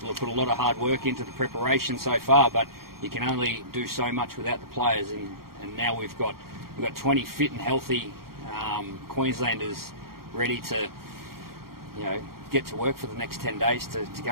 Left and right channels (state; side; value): late; left; 0.93 ms